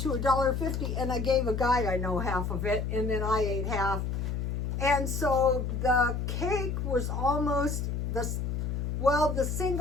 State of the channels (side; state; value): left; noise; hum, 2 dB below the sound